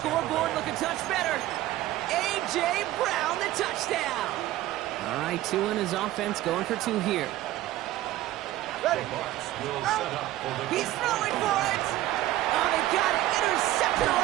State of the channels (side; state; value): left; quieter; 15.2 dB